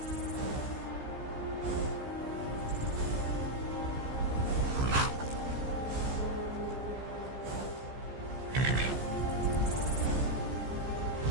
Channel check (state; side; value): late; left; 15 ms